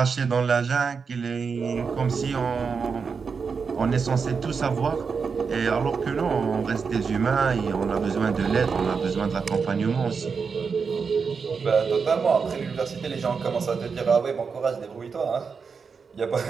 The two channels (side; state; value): left; quieter; 5.5 dB